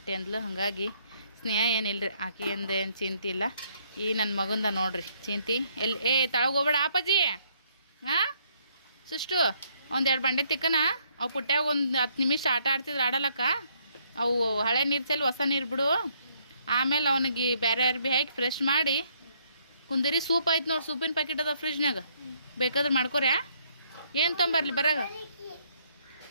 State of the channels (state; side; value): inverted; both; correlation -0.69